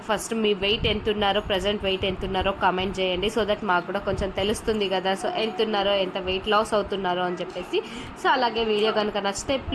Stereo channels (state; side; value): identical; both; correlation 1.00